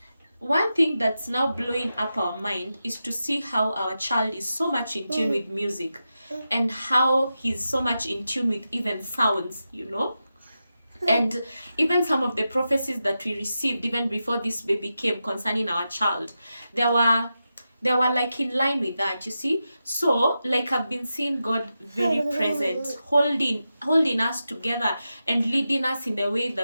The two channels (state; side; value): inverted; both; correlation -0.90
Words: one thing that's now blowing up our mind is to see how our child is so much in tune with music, and how he's so much in tune with even sounds. And even some of the prophecies that we received even before this baby came concerning our child, there were like in line with that, you see. So like, I've been seeing God very present, holding us together and leading us in the way